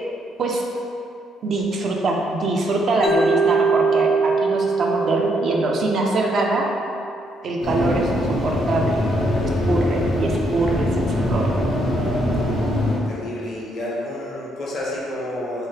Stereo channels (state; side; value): normal; both; correlation 0.74